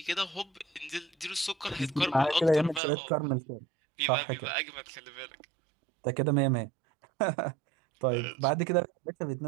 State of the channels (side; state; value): left; drops out; at 2.8 s